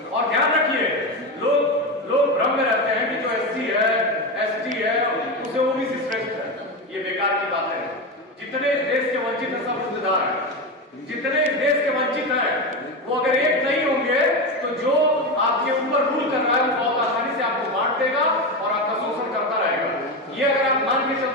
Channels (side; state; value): both; normal; correlation 0.17